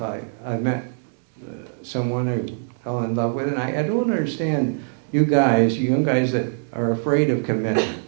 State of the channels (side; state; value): left; silent; digital silence